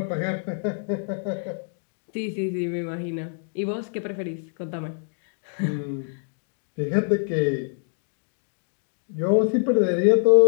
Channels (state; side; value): silent; right; 61 dB below the other